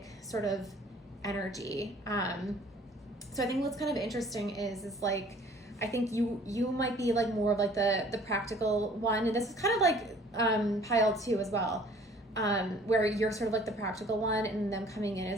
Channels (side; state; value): both; normal; correlation 0.53